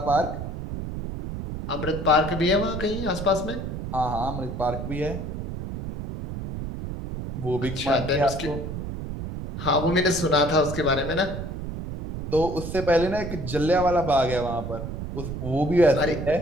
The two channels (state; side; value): noise; right; rumble, 6 dB below the sound